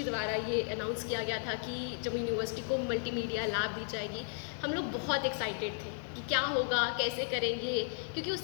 द्वारा ये अनाउंस किया गया था कि जम्मू यूनिवर्सिटी को मल्टीमीडिया लैब दी जाएगी। हम लोग बहुत एक्साइटेड थे कि क्या होगा, कैसे करेंगे, क्योंकि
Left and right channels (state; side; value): silent; right; 55 dB below the other